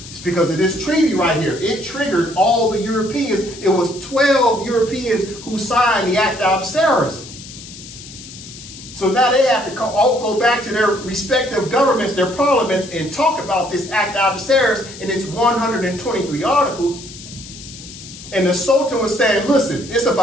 It's because of this treaty right here. It triggered all the Europeans. It was 12 Europeans who signed the Act of Algeciras. So now they have to all go back to their respective governments, their parliaments, and talk about this Act of Algeciras and its 123 articles. And the Sultan was saying, listen, it's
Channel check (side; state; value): left; noise; hiss, 15 dB below the sound